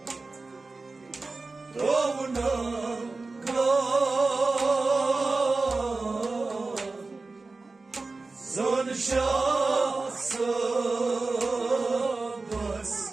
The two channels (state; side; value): quieter; left; 3.7 dB